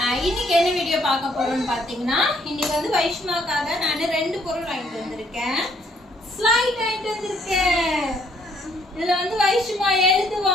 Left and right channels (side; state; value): both; normal; correlation 0.67